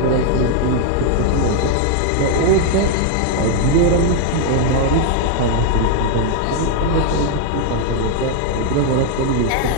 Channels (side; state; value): both; different; correlation 0.00